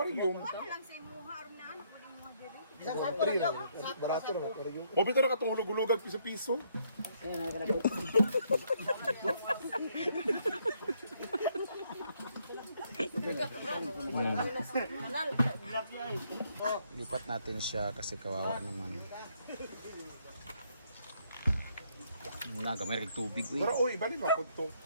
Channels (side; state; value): both; inverted; correlation -0.71